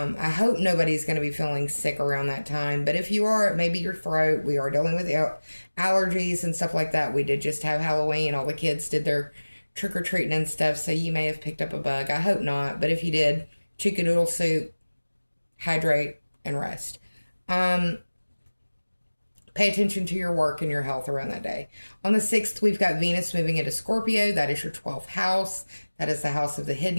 hope nobody's going to be feeling sick around that time. But if you are, maybe your throat. We are dealing with allergies and stuff like that. We did just have Halloween. All the kids did their trick-or-treating and stuff. So you may have picked up a bug. I hope not. But if you did, chicken noodle soup, hydrate, and rest. Pay attention to your work and your health around that day. On the 6th, we've got Venus moving into Scorpio. That is your 12th house. That is the house of the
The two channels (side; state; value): both; inverted; correlation -1.00